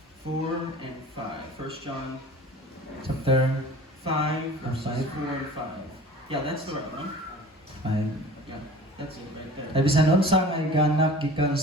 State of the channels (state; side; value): normal; both; correlation 0.43